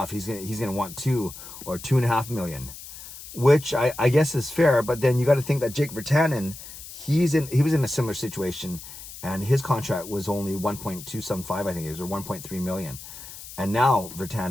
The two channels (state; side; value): noise; left; hiss, 14 dB below the sound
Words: He's gonna want 2 or 2.5 million," which I guess is fair. But then you got to think that Jake Virtanen, he was in a similar situation, and his contract was only 1.275, I think it was, or 1.3 million. And now